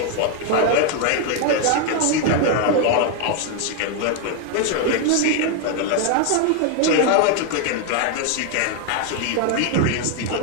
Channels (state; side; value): different; both; correlation 0.01